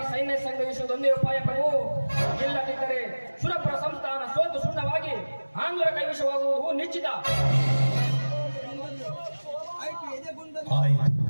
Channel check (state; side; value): inverted; both; correlation -1.00